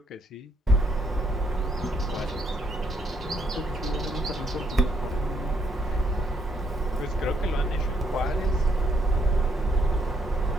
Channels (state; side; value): normal; both; correlation 0.71